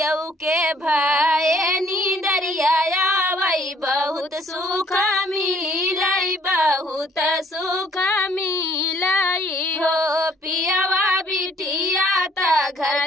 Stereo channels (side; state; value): both; normal; correlation 0.62